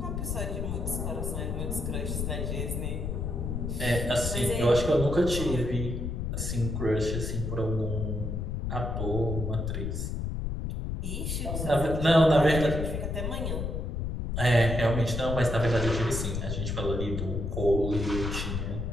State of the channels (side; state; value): left; noise; rumble, 3 dB below the sound